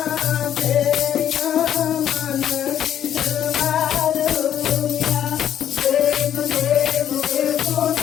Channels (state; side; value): quieter; right; 10.3 dB